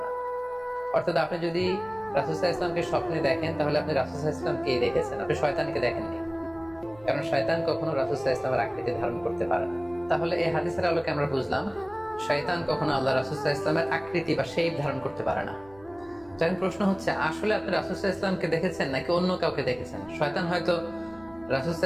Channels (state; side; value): noise; right; hum, 25 dB below the sound